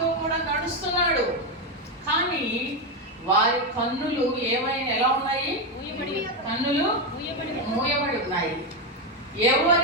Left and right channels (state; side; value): normal; both; correlation 0.08